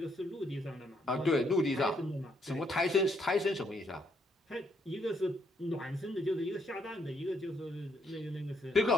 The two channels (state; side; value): normal; both; correlation 0.72